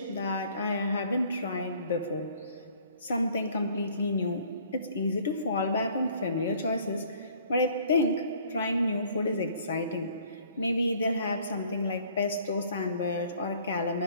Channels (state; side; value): inverted; both; correlation -0.56